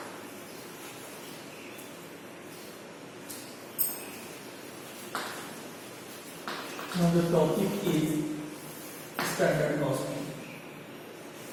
Now the topic is standard costing.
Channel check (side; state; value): both; identical; correlation 1.00